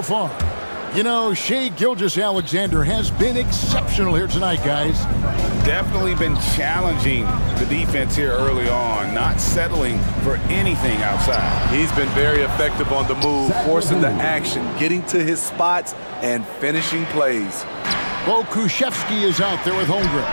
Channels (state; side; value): inverted; both; correlation -1.00